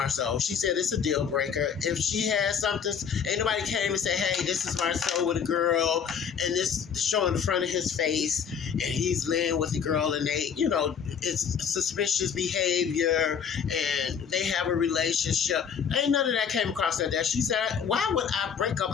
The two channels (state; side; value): quieter; right; 7.2 dB